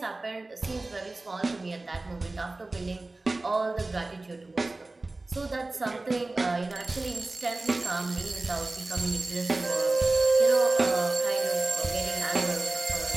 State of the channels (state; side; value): quieter; left; 3.1 dB